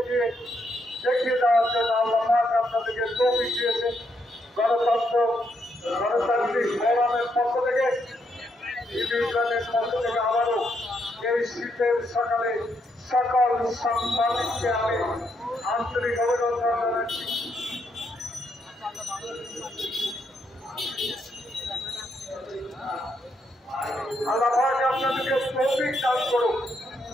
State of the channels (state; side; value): normal; both; correlation 0.77